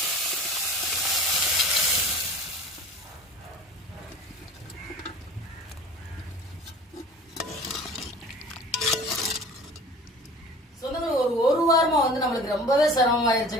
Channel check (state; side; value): normal; both; correlation 0.42